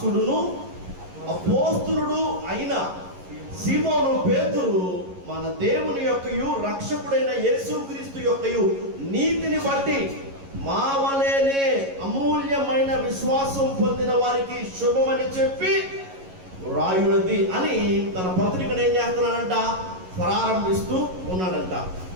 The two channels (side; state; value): left; late; 11 ms